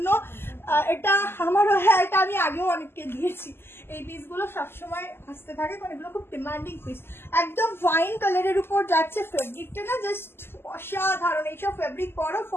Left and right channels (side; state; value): right; late; 0.11 ms